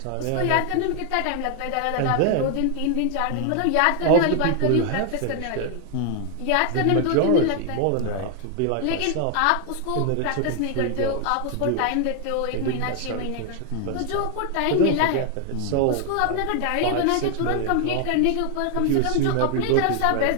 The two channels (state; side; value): different; both; correlation 0.00